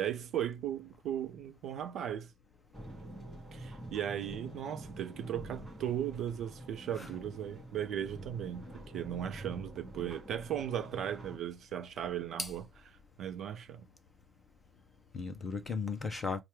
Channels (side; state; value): left; quieter; 6.0 dB